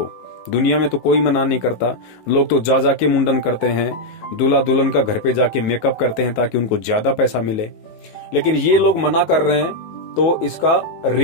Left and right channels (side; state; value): right; late; 19 ms